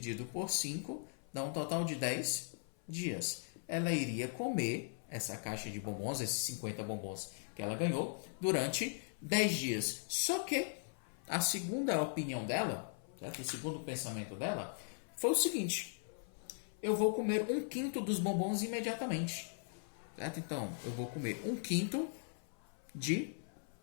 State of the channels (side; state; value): right; silent; 52 dB below the other